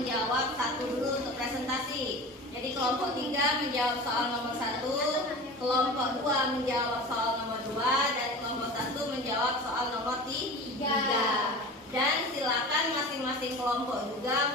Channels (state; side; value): normal; both; correlation 0.35